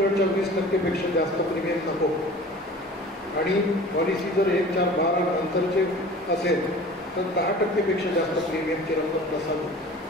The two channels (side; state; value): both; normal; correlation 0.42